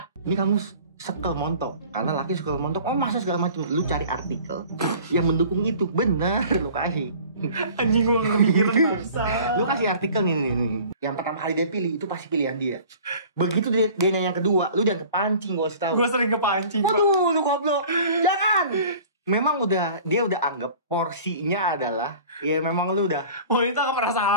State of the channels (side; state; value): both; inverted; correlation -0.46